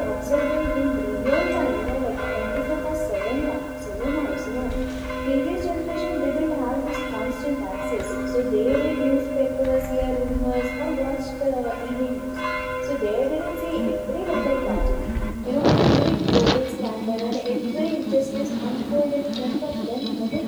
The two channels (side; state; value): both; identical; correlation 1.00